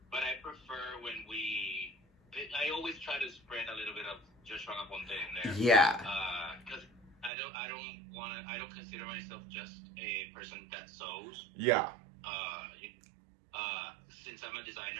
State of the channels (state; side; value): drops out; left; at 7.3 s